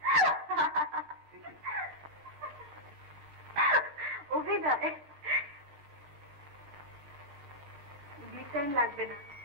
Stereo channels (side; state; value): left; late; 20 ms